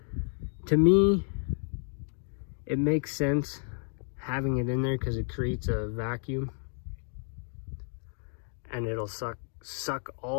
to me, it makes sense having it in there because it creates a vacuum, and it'll suck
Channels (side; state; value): right; silent; 57 dB below the other